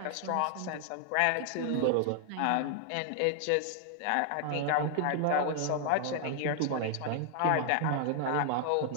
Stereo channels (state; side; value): different; both; correlation 0.00